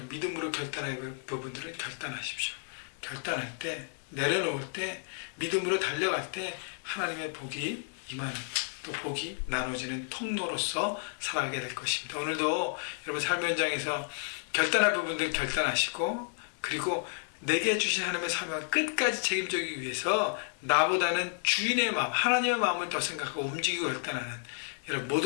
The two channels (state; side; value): silent; right; 57 dB below the other